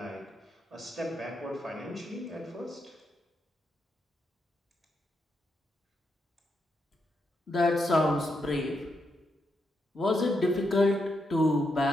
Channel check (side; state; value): both; normal; correlation 0.82